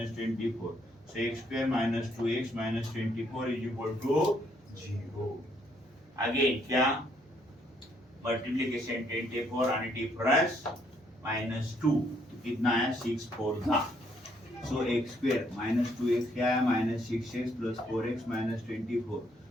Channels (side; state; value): both; normal; correlation 0.69